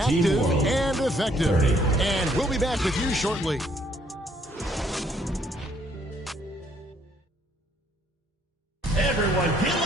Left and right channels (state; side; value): normal; both; correlation 0.66